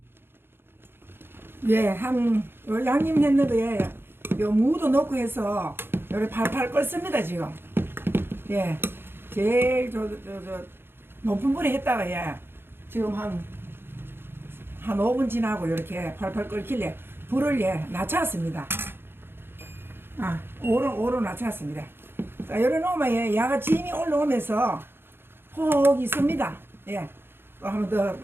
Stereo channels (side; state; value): left; late; 0.11 ms